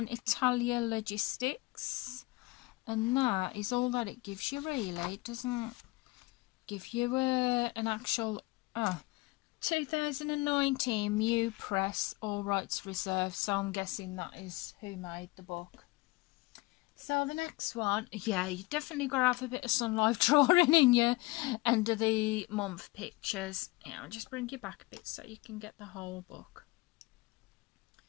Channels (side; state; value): right; quieter; 22.3 dB